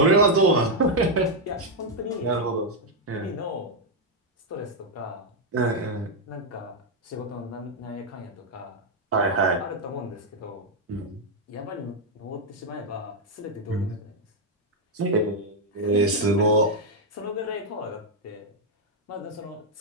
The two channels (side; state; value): both; normal; correlation 0.00